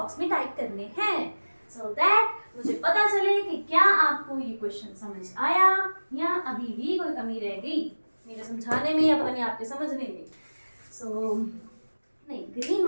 में टाइप करने हैं, सो दैट मुझे पता चले कि क्या आपको ये क्वेश्चन समझ आया या अभी भी कोई कमी रह गई मेरे समझाने में या पता नहीं आपके समझने में। सो नहीं, ग्रीन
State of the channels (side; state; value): both; inverted; correlation -1.00